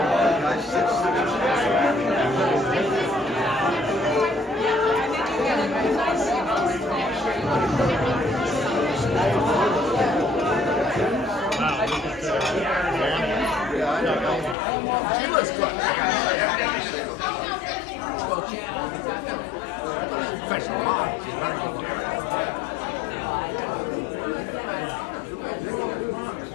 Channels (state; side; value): drops out; right; at 14.6 s